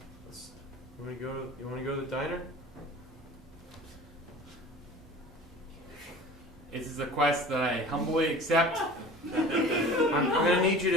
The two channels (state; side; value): normal; both; correlation 0.40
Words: You want to go to the diner? This is a quest that I humbly accept. I'm gonna need